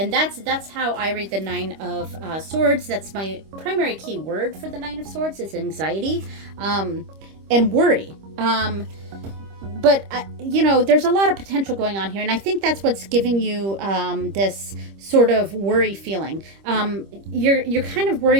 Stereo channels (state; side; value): late; left; 25 ms